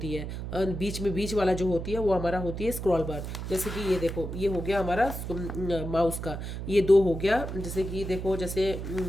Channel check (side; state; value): right; noise; hum, 6 dB below the sound